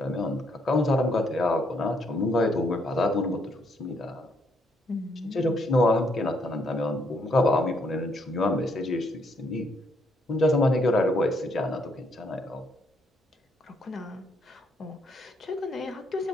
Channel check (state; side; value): normal; both; correlation 0.72